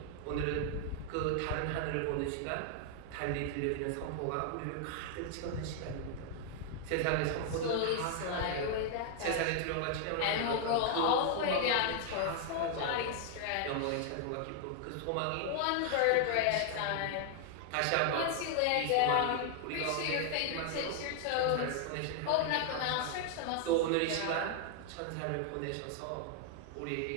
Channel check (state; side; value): different; both; correlation 0.00